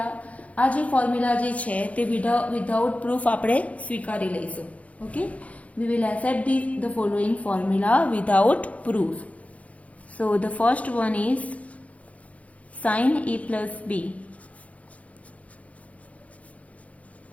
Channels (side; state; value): right; late; 0.066 ms